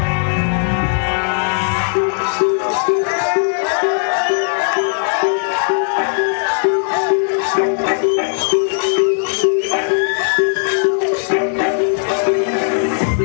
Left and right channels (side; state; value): right; silent; 67 dB below the other